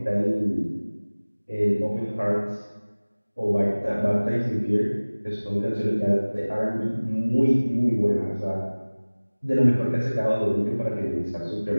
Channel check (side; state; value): both; inverted; correlation -1.00